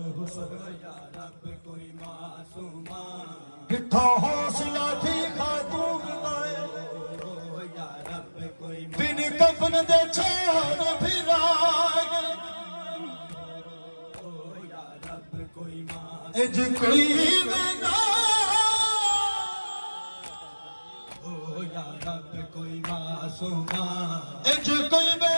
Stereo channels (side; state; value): both; inverted; correlation -1.00